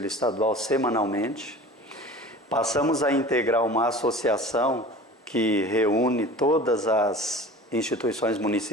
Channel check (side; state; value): both; normal; correlation 0.40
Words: Estadual semanalmente. Passamos a integrar uma associação que reúne todas as instituições